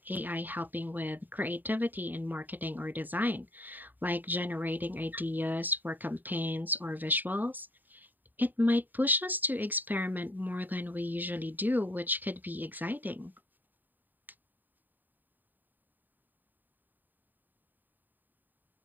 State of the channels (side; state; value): left; late; 0.089 ms